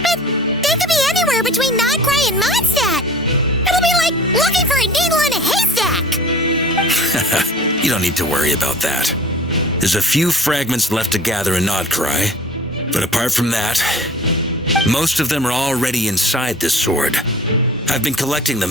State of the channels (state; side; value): normal; both; correlation 0.44